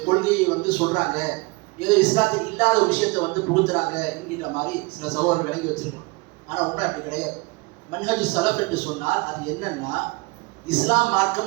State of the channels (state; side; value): quieter; left; 25.8 dB